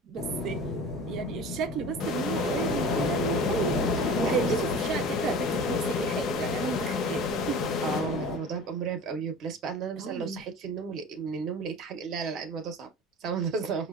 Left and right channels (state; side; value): normal; both; correlation 0.37